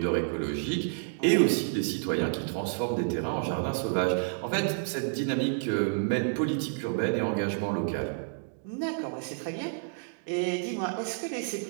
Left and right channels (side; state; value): left; silent; digital silence